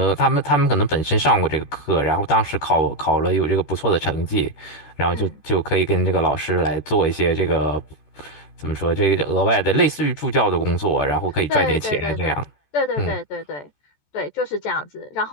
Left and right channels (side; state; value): right; late; 14 ms